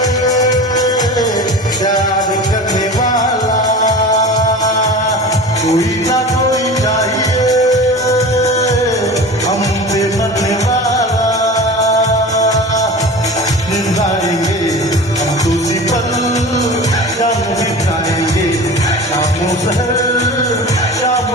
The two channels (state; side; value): normal; both; correlation 0.35